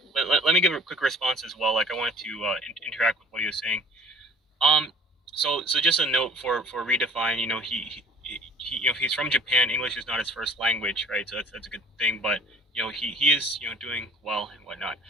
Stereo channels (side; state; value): both; normal; correlation 0.50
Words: but let me give a quick response as well. Like I wanted to interact with what he was saying. So just a note for Redefine. You know, he you know, he's from Japan. English is not his first language, right? So that's a good thing. But you know, he is, you know, doing well and whatnot.